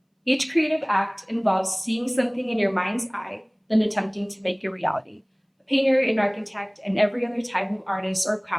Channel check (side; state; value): both; identical; correlation 1.00